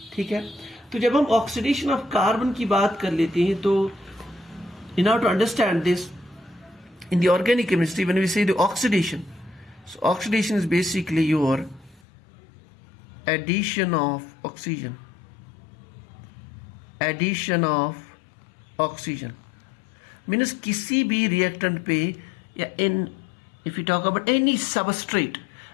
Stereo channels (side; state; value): right; drops out; at 12.0 s